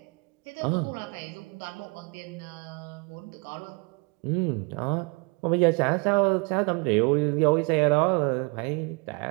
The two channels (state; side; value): quieter; left; 31.7 dB